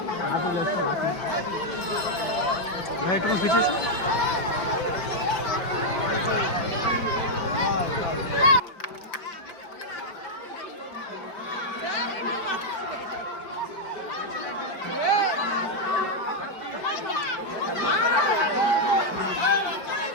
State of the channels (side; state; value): right; late; 5.2 ms